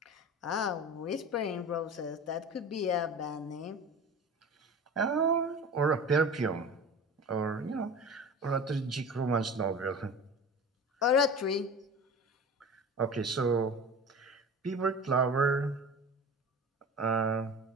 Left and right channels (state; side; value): normal; both; correlation 0.35